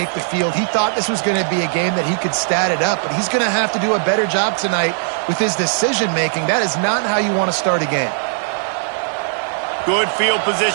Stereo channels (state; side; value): silent; left; digital silence